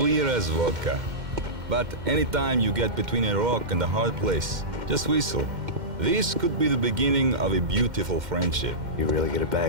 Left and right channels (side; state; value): left; late; 2.1 ms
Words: as vodka. But anytime you get between a rock and a hard place, just whistle. This could be the beginning of a beautiful friendship. You really get a